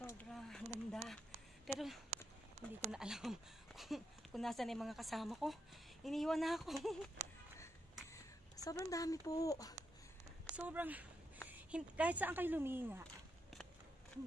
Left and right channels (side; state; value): both; normal; correlation 0.83